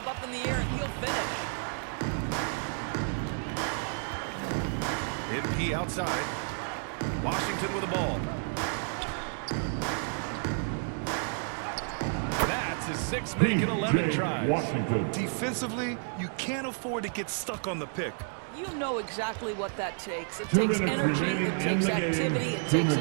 up in the air, and he'll finish. MP outside. Washington with the ball. That's his 6 make and 11 tries. Washington. Defensively, you can't afford to get stuck on the pick. You know exactly what that takes. It 2 takes minutes energy, remaining it in takes the game. activity, it 2 takes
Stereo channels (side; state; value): left; silent; 57 dB below the other